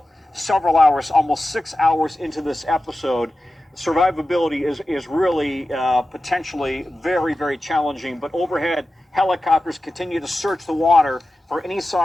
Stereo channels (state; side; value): normal; both; correlation 0.94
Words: several hours, almost 6 hours into this episode. Survivability is really potentially very, very challenging. But overhead, helicopters continue to search the water for any